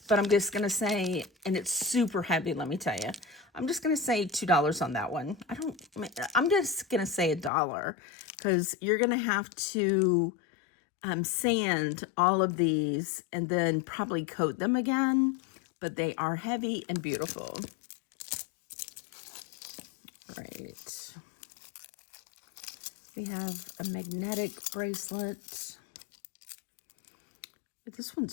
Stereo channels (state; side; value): drops out; right; at 7.5 s